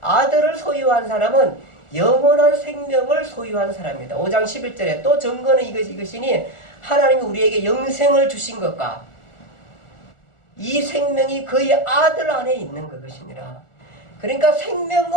아들을 소유한 사람은 영원한 생명을 소유한 사람입니다. 5장 11절에 또 증거는 이것이니 하나님이 우리에게 영생을 주신 것과 이 생명이 그의 아들 안에 있는 것이니라. 그러니까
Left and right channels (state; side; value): late; right; 1.4 ms